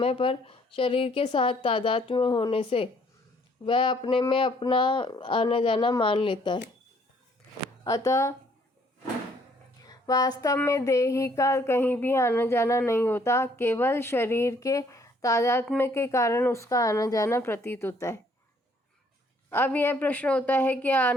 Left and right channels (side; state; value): both; normal; correlation 0.64